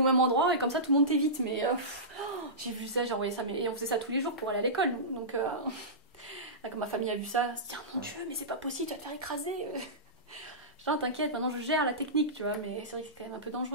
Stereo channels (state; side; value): normal; both; correlation -0.19